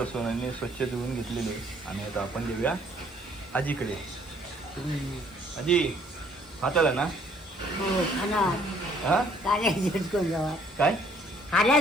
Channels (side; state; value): both; normal; correlation 0.62